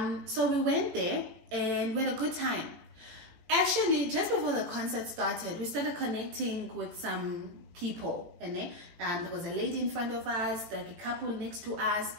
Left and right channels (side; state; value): left; late; 18 ms